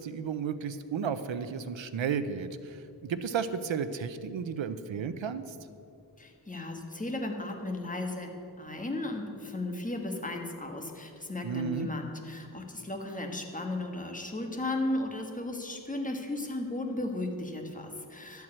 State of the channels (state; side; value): normal; both; correlation 0.34